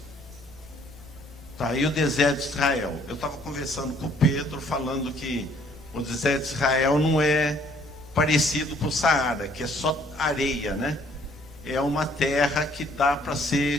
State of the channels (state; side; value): normal; both; correlation 0.61